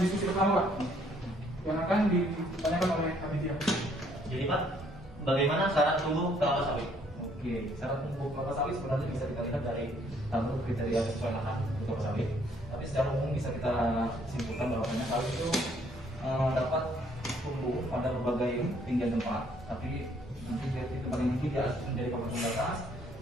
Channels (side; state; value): both; normal; correlation 0.65